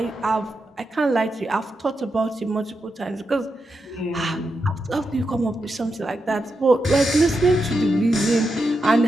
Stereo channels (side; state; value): both; normal; correlation 0.86